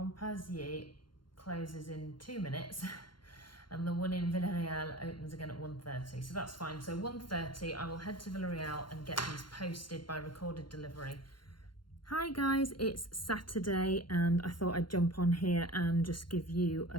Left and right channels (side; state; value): right; late; 0.72 ms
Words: closes in 2 minutes and the one in Villarreal opens again at 1:30. So that's fine. So 1:30, I will head to Villarreal and get these posted by recorded delivery. Hi guys, it's Saturday and I thought I'd jump on here and just give you a